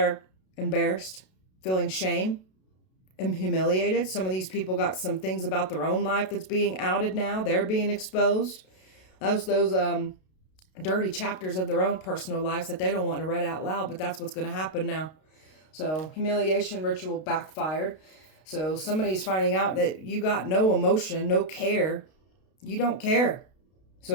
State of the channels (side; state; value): right; late; 32 ms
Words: embarrassed, feeling shame and humiliated. Some of these people got some things about their own life that's being outed now. They're being exposed. Those dirty chapters of their own personal lives that they don't want to read out loud, but that's what's going to happen now. So humiliation ritual backfired. So somebody's finding out that you got no emotion, no care. You don't care.